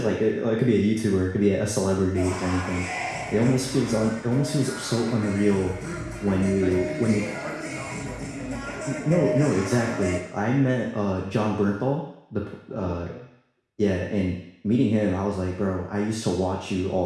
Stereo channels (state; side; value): identical; both; correlation 1.00